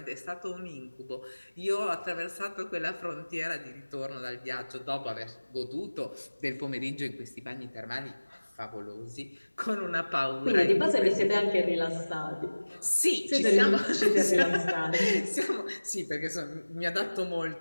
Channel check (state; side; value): inverted; both; correlation -1.00